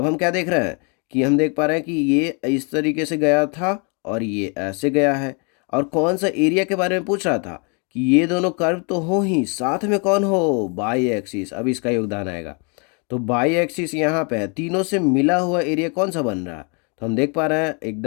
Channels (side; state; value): right; quieter; 35.2 dB